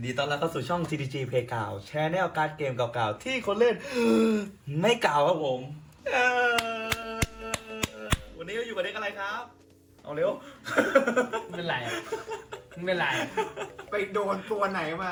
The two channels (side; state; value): both; identical; correlation 1.00